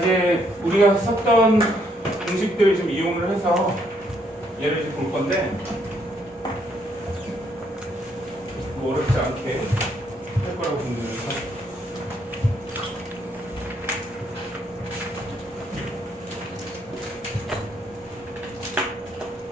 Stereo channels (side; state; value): both; normal; correlation 0.72